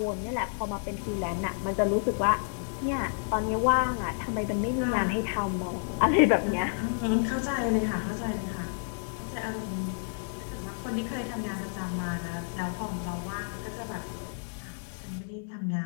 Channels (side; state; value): right; silent; digital silence